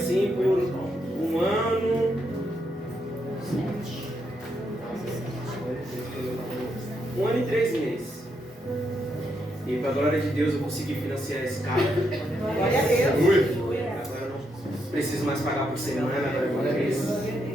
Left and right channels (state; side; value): normal; both; correlation 0.79